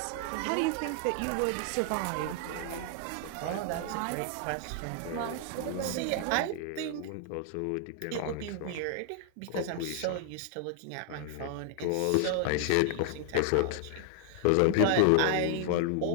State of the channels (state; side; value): different; both; correlation 0.00